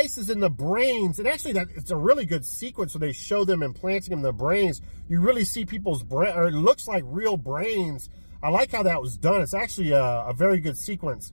in the brains, and actually it's a really good sequence where they show them implanting them in the brains. You really see people's brain, or it looks like real brains. I like how that was done. It's actually a very good sequence.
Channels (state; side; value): inverted; both; correlation -1.00